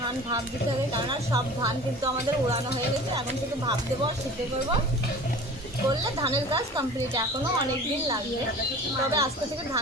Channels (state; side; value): normal; both; correlation 0.41